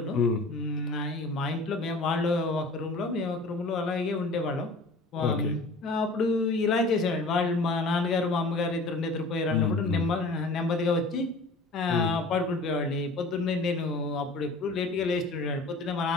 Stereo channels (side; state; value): right; quieter; 3.1 dB